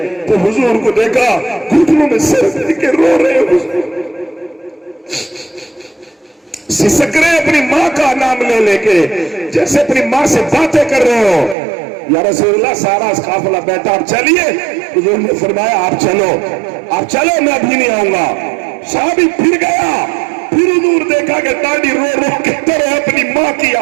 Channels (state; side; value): drops out; left; at 11.6 s